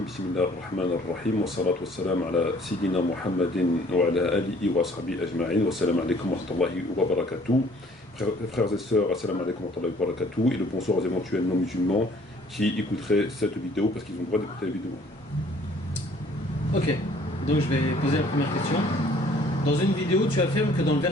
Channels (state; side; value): normal; both; correlation 0.57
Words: بسم الله الرحمن الرحيم والصلاة والسلام على سيدنا محمد وعلى آله وصحبه أجمعين والسلام عليكم ورحمة الله وبركاته. Frères et sœurs, assalamu alaikum wa rahmatullahi wa barakatuh, et le bonsoir aux éventuels non-musulmans qui écouteraient cette vidéo parce qu'ils ont le droit d'écouter la vidéo. Ok, donc je vais poser la première question. Dans une vidéo, tu affirmes que dans le